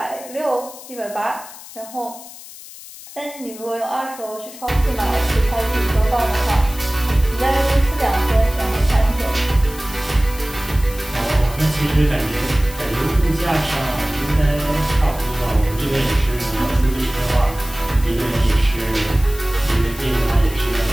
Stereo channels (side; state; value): left; noise; hiss, 16 dB below the sound